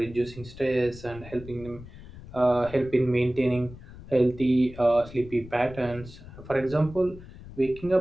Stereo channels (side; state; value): left; noise; rumble, 16 dB below the sound